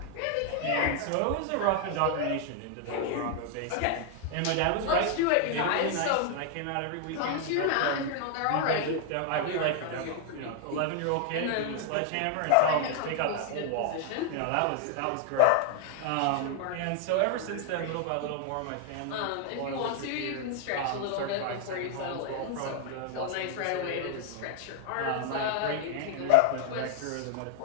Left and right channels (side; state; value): both; different; correlation 0.00